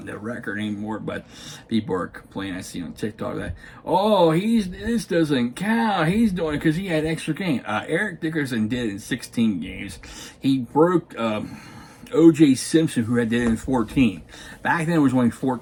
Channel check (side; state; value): both; identical; correlation 1.00